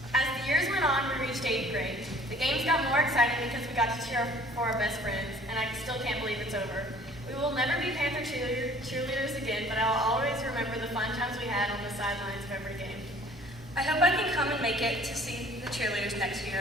As the years went on, we reached 8th grade. The games got more exciting because we got to cheer for our best friends, and I still can't believe it's over. We will never be Panther cheerleaders again, but I will always remember the fun times we had on the sidelines of every game. I hope I can come and make it to see the cheerleaders next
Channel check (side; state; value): both; normal; correlation 0.53